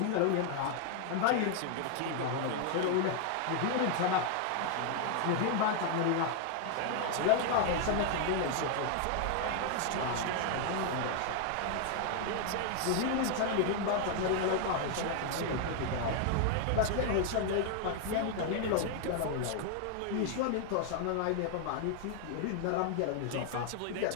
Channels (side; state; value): both; different; correlation 0.00